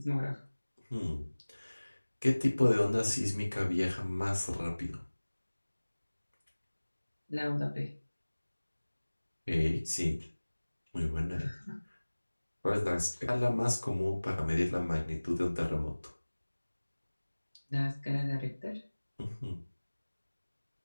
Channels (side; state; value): both; inverted; correlation -1.00